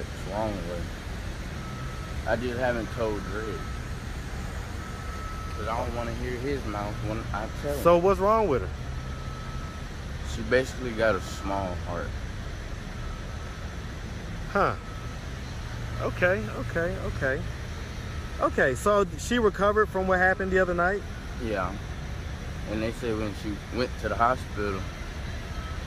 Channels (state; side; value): identical; both; correlation 1.00